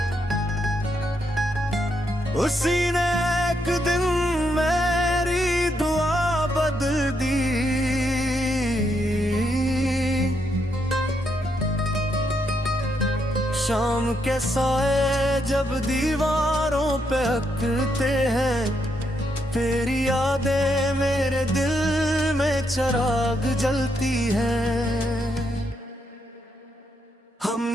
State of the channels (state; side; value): normal; both; correlation 0.78